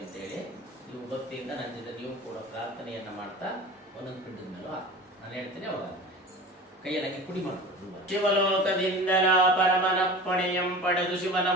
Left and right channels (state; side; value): normal; both; correlation 0.36